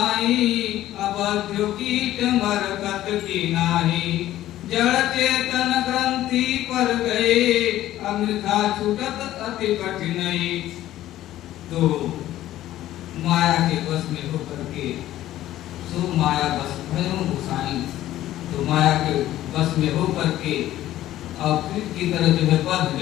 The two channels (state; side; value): quieter; right; 13.9 dB